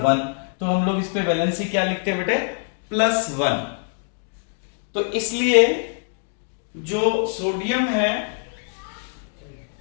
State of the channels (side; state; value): right; silent; 63 dB below the other